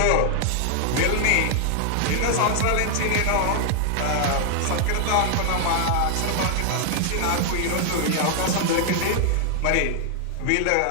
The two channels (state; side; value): different; both; correlation 0.00